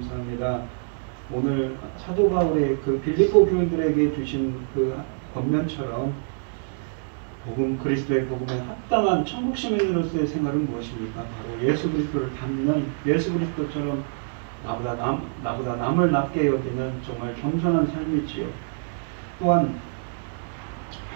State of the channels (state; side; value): silent; left; 61 dB below the other